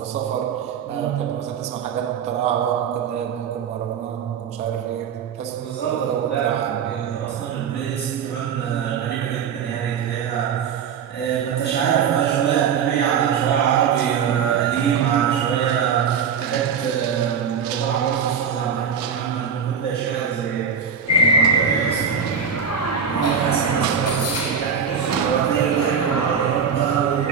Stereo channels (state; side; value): quieter; left; 6.8 dB